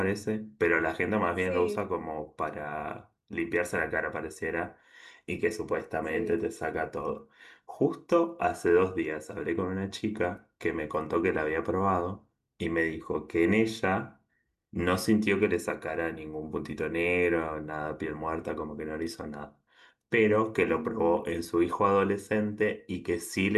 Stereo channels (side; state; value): both; identical; correlation 1.00